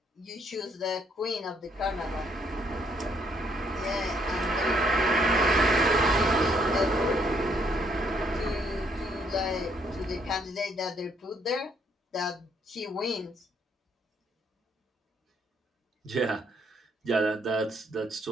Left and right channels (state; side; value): normal; both; correlation 0.69